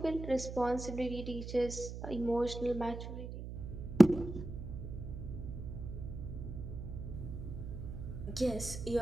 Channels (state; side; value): noise; right; hum, 8 dB below the sound